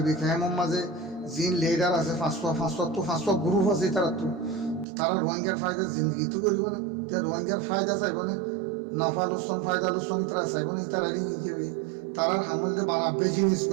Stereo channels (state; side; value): drops out; left; at 4.9 s